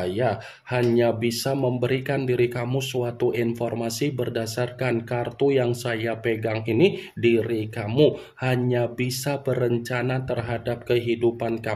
hanya bisa memberikan diri kamu suatu informasi berdasarkan kartu yang saya pegang ini. Diri kamu hanya bisa berencana terhadap kehidupan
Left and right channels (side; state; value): both; identical; correlation 1.00